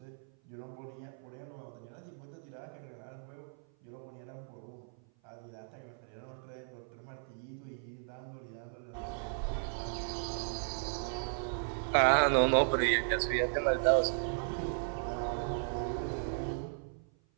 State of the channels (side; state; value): left; silent; 54 dB below the other